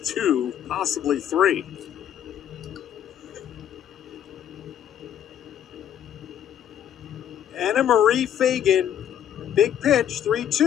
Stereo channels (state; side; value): quieter; right; 10.0 dB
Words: 2, possibly 3. Anna Marie Fagan, big pitch,